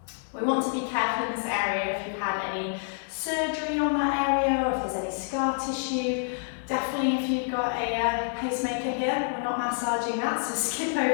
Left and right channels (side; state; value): right; silent; 60 dB below the other